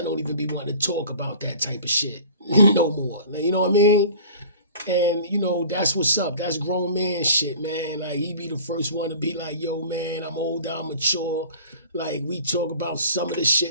don't even be wanting to talk about that type of shit no more. You know what I mean? And you know, that's what's up. That's grown man shit, man. Like he be the first one to be like, yo, man, I'm older, I'm mature. Like we talk about some of this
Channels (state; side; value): inverted; both; correlation -0.44